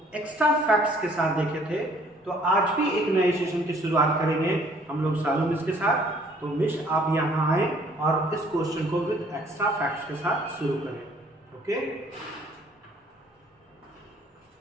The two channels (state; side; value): normal; both; correlation 0.59